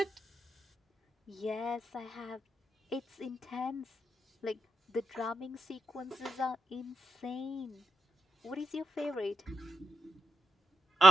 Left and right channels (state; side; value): normal; both; correlation 0.84